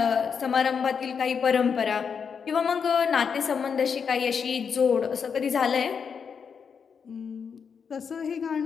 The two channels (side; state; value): right; quieter; 6.4 dB